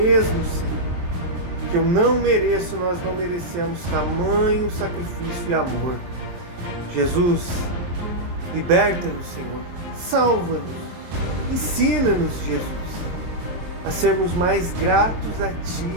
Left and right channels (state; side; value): late; left; 23 ms